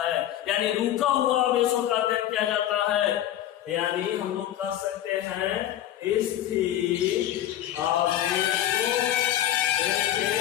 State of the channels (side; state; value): right; quieter; 12.5 dB